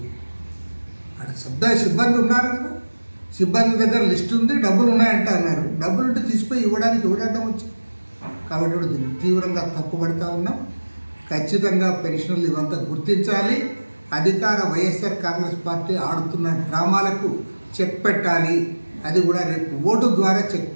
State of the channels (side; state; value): both; inverted; correlation -1.00